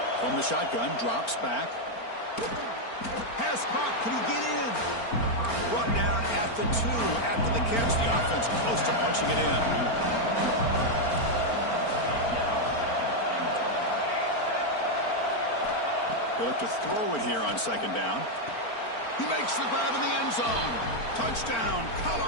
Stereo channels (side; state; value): right; late; 4.4 ms